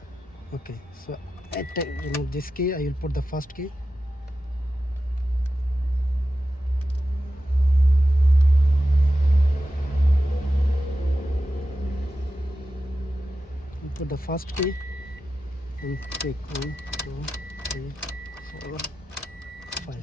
Okay, so at remove this key, I will put the first key. Put the first key and click 1, 2, 3, 4,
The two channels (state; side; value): normal; both; correlation 0.91